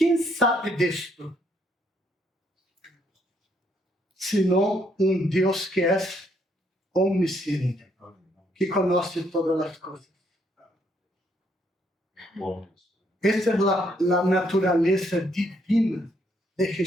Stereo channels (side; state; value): both; normal; correlation 0.71